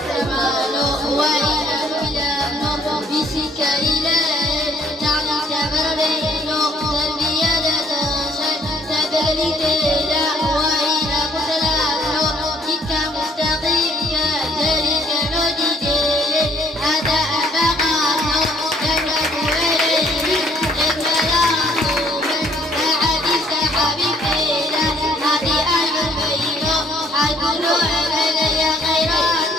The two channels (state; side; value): normal; both; correlation 0.64